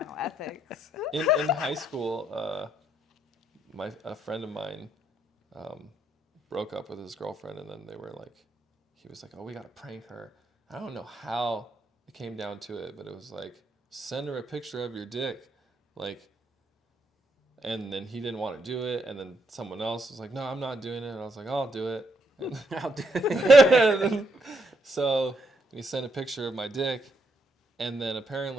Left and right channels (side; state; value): both; normal; correlation 0.75